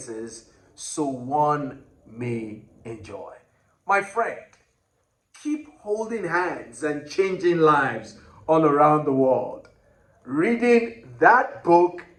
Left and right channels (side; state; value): both; identical; correlation 1.00